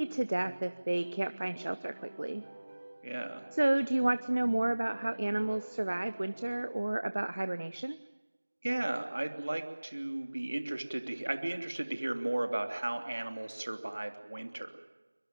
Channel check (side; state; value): both; inverted; correlation -1.00